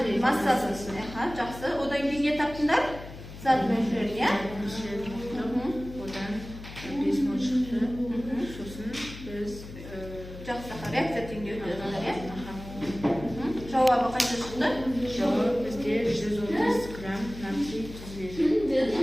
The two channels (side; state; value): left; noise; hum, 13 dB below the sound